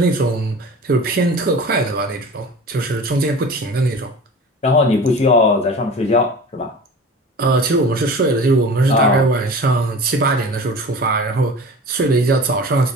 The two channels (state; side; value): normal; both; correlation 0.37